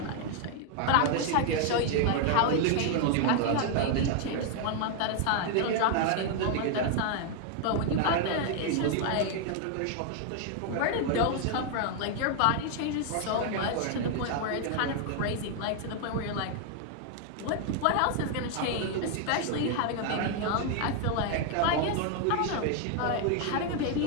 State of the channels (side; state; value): both; different; correlation 0.00